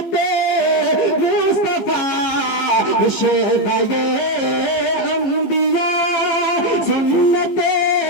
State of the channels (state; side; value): late; right; 15 ms